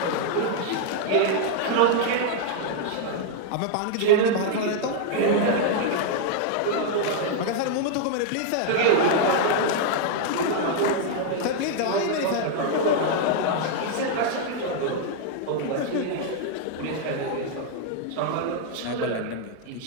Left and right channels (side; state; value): both; different; correlation 0.00